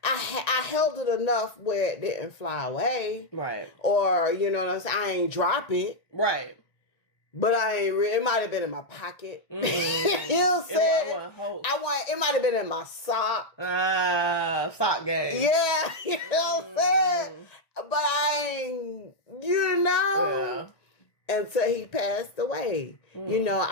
I held it enough where it didn't fly away. Right. Or, you know what I'm saying? I ain't drop it. Right. But I ain't it might have been in my pocket. Mm. You know what I'm saying? It might have been in my sock. Sock game. Yeah, you know what I'm saying? But I ain't, Yeah. until he passed away. Mm.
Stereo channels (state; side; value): late; right; 1.9 ms